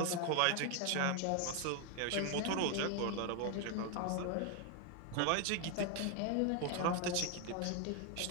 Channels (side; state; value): both; different; correlation 0.01